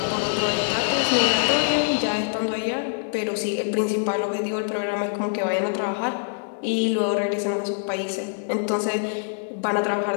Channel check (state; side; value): silent; right; 62 dB below the other